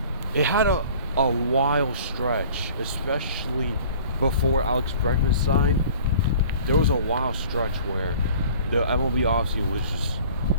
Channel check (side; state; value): both; inverted; correlation -0.47